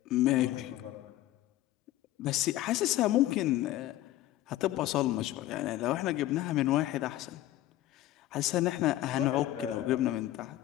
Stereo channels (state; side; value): quieter; right; 14.9 dB